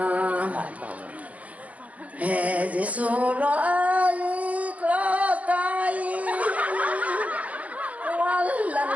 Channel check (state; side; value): late; left; 0.069 ms